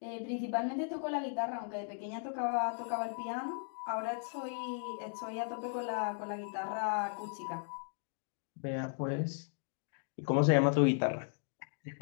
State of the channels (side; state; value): right; silent; digital silence